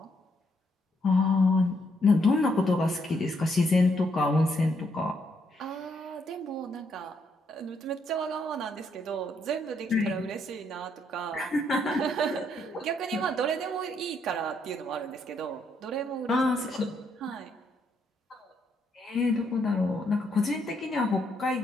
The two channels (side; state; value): both; normal; correlation 0.74